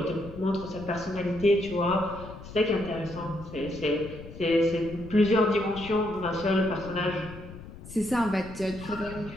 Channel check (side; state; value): left; noise; rumble, 14 dB below the sound